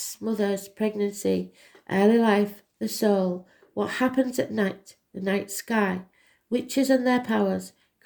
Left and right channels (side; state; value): both; identical; correlation 1.00